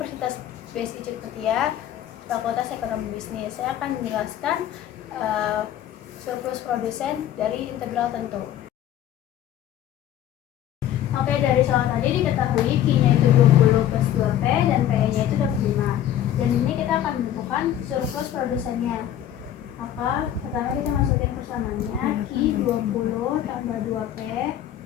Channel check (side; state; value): right; quieter; 11.3 dB